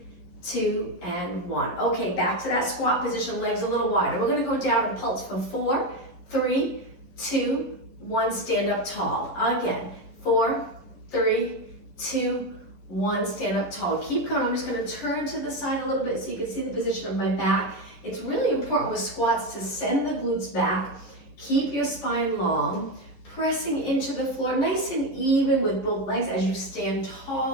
2, and 1. Okay, back to that squat position, legs a little wider. We're gonna go down and pulse for 4, 3, 2, 1, stand up tall. Again, 4, 3, 2, 1, stand up tall. Keep going. I'm just gonna turn to the side a little bit so you can see the position of my back. It's really important with squats to send the glutes back, keep your spine long, pressing into the floor nice and even with both legs as you stand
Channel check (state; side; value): late; right; 11 ms